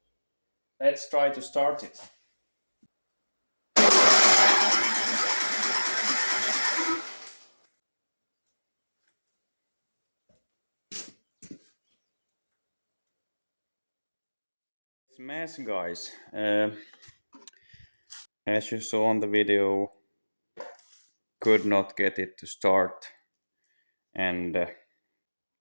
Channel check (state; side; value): inverted; both; correlation -1.00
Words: let's try to start it. It's a mess, guys. As you saw on the video, could not get it to start, and